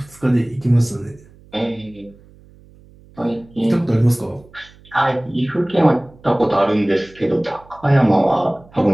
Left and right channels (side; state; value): right; noise; hum, 26 dB below the sound